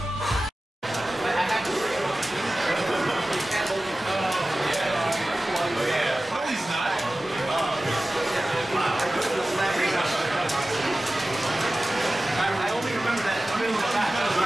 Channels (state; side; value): normal; both; correlation 0.96